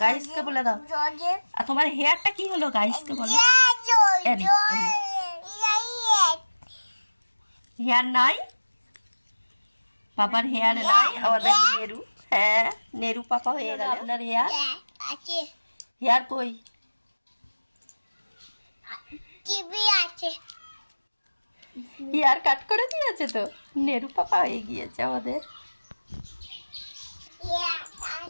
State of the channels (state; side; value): inverted; both; correlation -1.00